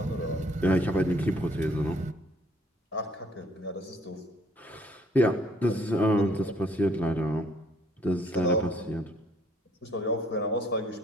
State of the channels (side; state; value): both; normal; correlation 0.62